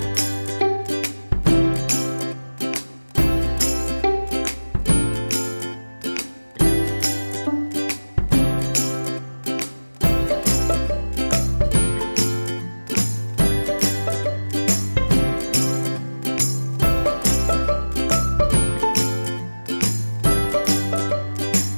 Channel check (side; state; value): both; inverted; correlation -1.00